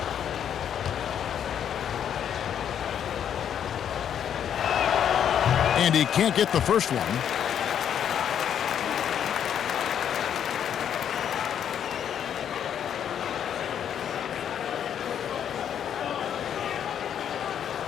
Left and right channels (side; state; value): right; quieter; 9.0 dB